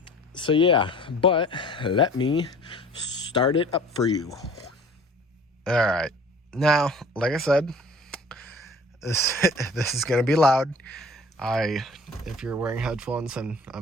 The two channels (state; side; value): normal; both; correlation 0.48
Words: yeah, but let me start it up for you. All right. Now, like I said, this is going to be loud. If you're wearing headphones, and